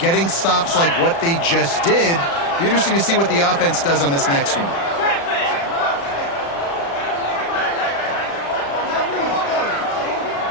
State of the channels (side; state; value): right; late; 36 ms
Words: stops like what they just did. Be interesting to see what the offense does on this next one.